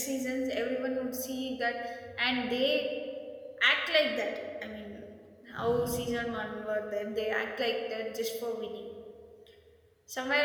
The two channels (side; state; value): both; identical; correlation 1.00